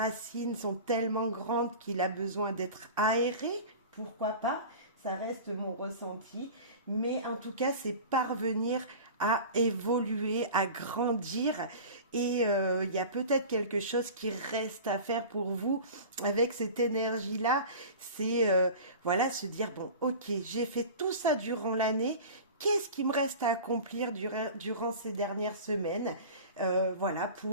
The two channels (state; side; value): inverted; both; correlation -0.36